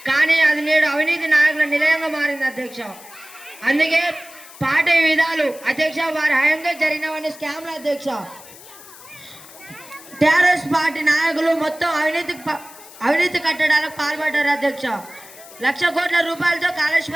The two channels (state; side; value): noise; left; hiss, 19 dB below the sound